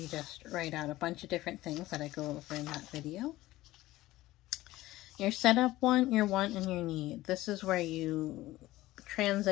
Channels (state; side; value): quieter; right; 17.0 dB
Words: just write out a bunch of different things that I go over in that video. Your setup one, your want, and your need. This is where you